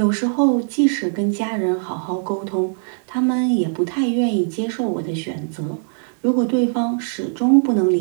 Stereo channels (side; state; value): left; silent; digital silence